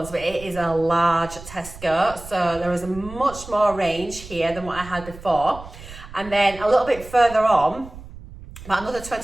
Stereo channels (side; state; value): right; noise; rumble, 16 dB below the sound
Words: but it is a large Tesco. So there is a much more range here than what I had before. And then a little bit further on, about another